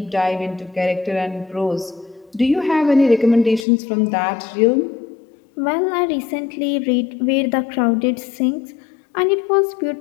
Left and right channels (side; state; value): right; drops out; at 3.7 s